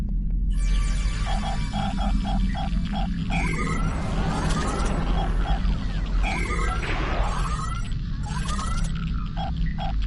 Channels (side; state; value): both; identical; correlation 1.00